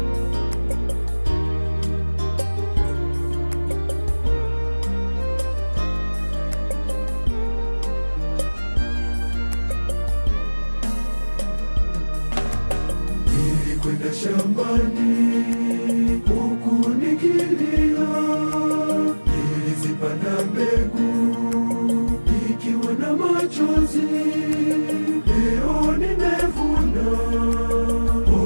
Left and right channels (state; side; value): inverted; both; correlation -1.00